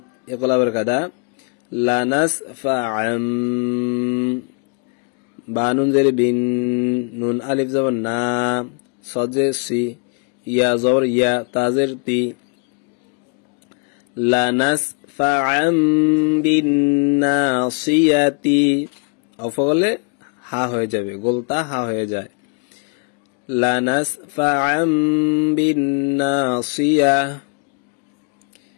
ইকলাবের কাদা, লানাস ফা আম। বা নুন জের বিন, নুন আলিফ জবর না, সজে সি, ইয়া জবর ইয়া, তাজের তি, লানাস ফা আম বিন নাসিয়াতি। অফলে হা হয়ে যাবে, গোলতা হা হয়ে যায়। লানাস ফা আম বিন নাসিয়া,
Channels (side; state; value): right; quieter; 38.2 dB